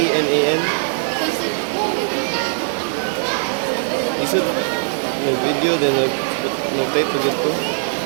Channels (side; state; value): left; silent; digital silence